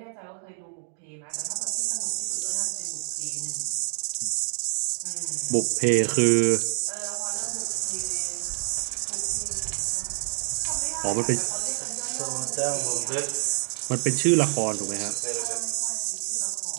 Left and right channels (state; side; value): silent; left; digital silence